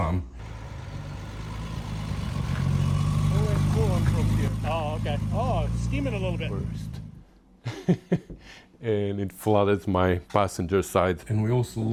Coolant from here. Oh, okay. Oh, it's steaming a little bit. First. And it flooded my passenger side, and we also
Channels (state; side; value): identical; both; correlation 1.00